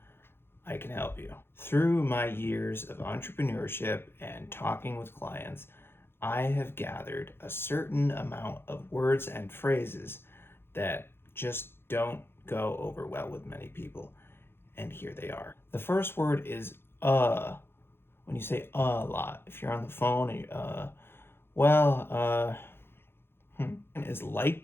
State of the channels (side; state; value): right; late; 0.11 ms